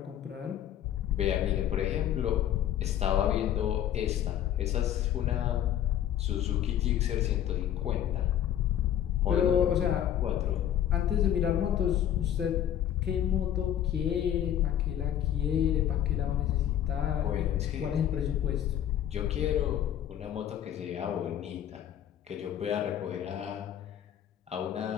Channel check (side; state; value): right; quieter; 10.8 dB